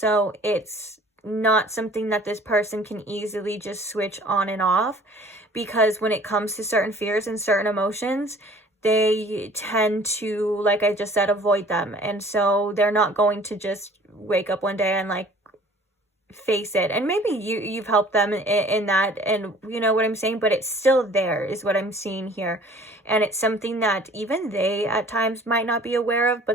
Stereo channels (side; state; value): both; normal; correlation 0.50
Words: it's not something that this person can easily just switch on and off, because when it comes to certain fears and certain emotions, they tend to, like I just said, avoid them. And so they're not going to just wake up one day and face it. And maybe you've helped them in that, and you know what I'm saying, but it's still there is what I'm seeing here. And it's something that even they at times might not be aware of,